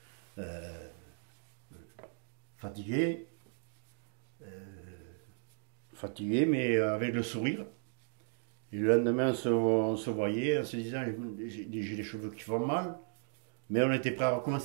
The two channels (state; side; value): silent; left; digital silence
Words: fatigué, mais avec le sourire. Et le lendemain, on se voyait en se disant, j'ai les cheveux qui font mal. Mais on était prêt à